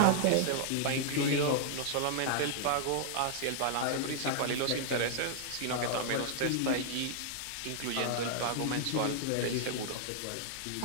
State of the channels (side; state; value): both; different; correlation -0.01